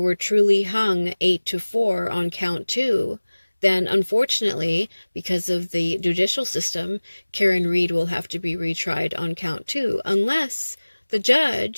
truly hung 8-4 on count 2, then unfortunately, because of the judicial system, Karen Reed will have to be retried on count 2, unless the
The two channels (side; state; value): both; inverted; correlation -1.00